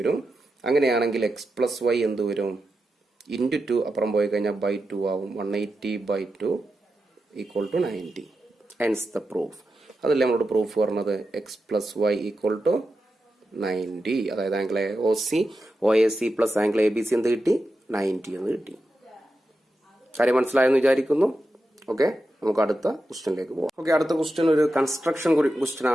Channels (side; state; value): both; normal; correlation 0.89